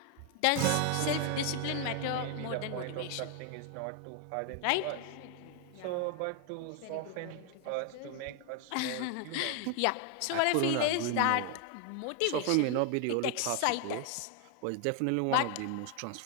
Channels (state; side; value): different; both; correlation 0.01